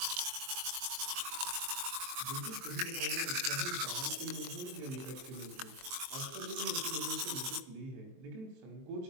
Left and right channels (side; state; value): left; late; 23 ms